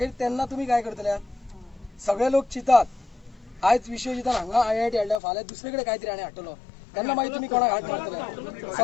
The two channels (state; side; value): drops out; right; at 5.2 s